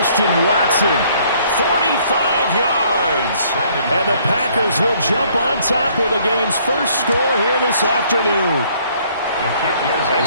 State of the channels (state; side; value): inverted; both; correlation -0.62